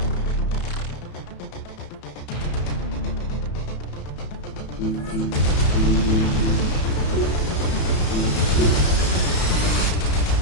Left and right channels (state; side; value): late; right; 33 ms